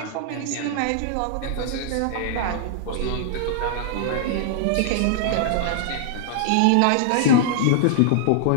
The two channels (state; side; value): different; both; correlation -0.01